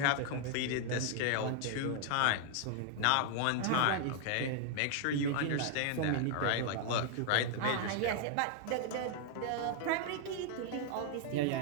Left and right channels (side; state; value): both; different; correlation 0.00